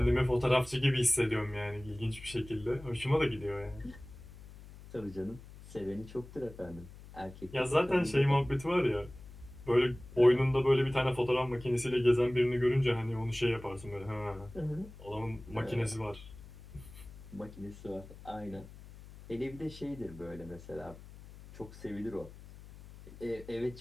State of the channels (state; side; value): noise; left; hum, 17 dB below the sound